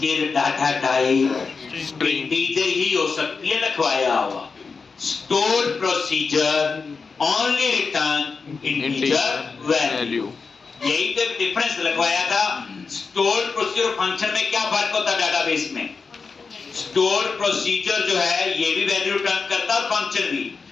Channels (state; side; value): quieter; right; 4.8 dB